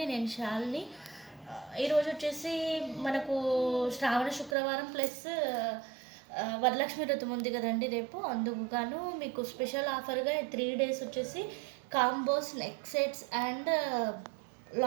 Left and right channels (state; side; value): drops out; left; at 4.5 s